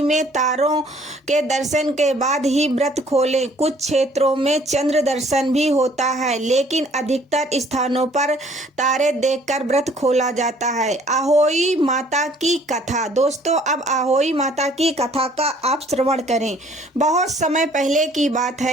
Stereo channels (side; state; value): both; normal; correlation 0.58